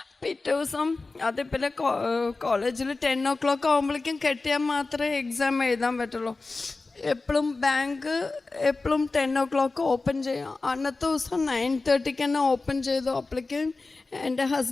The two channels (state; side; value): quieter; right; 3.6 dB